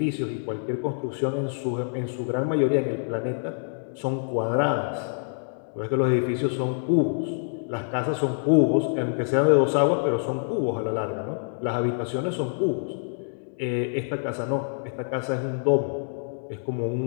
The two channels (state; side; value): silent; right; digital silence